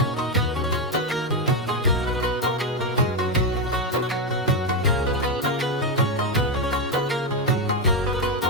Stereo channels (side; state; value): both; normal; correlation 0.09